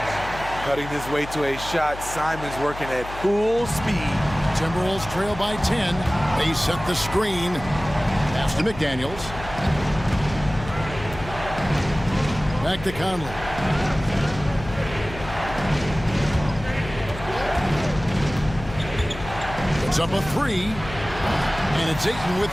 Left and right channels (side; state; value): left; noise; hum, 12 dB below the sound